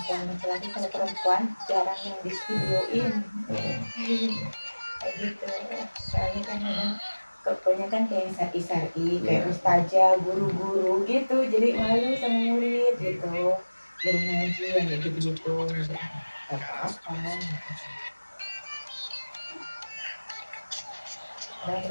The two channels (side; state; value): both; inverted; correlation -1.00